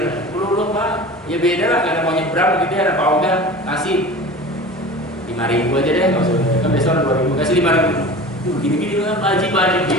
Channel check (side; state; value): both; normal; correlation 0.36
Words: dulu Pak, ya beda lah karena mau nyebrang gitu ya, ada Pak Oga kasih 5.000 aja deh, nggak usah kan besok 2.000 kasih 5.000, gini-gini kan wajib